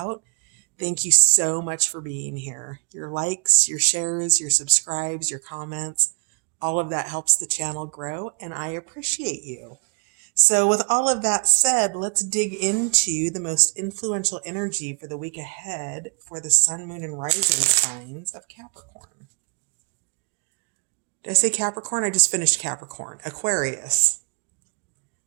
Thank you so much for being here. Your likes, your shares, your subscribes, your comments, all of that helps the channel grow, and I appreciate you. So with all of that said, let's dig into the most influential energy for the week ahead for the sun, moon, and rising signs of Capricorn. Did I say Capricorn? I just finished Capricorn. Aquarius.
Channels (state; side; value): quieter; left; 38.5 dB